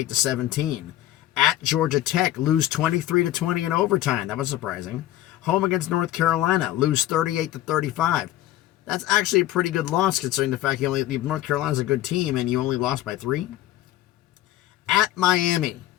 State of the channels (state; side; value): quieter; right; 14.3 dB